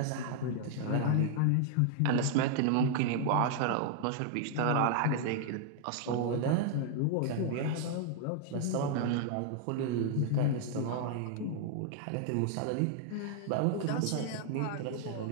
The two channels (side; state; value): both; different; correlation 0.00